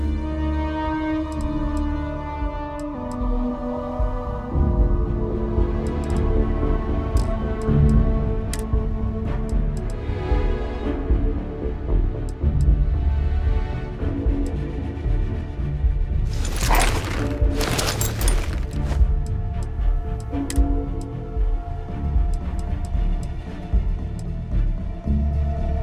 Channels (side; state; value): both; identical; correlation 1.00